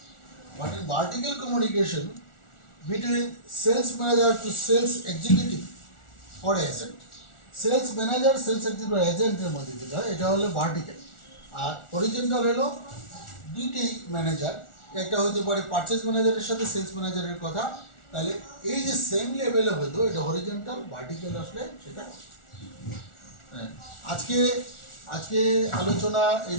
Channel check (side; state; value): right; late; 1.4 ms